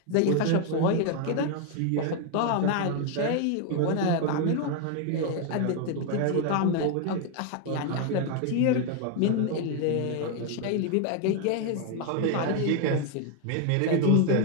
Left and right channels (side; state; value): both; different; correlation 0.00